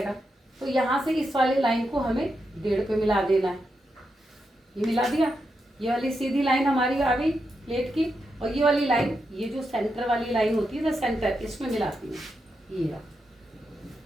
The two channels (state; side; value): normal; both; correlation 0.85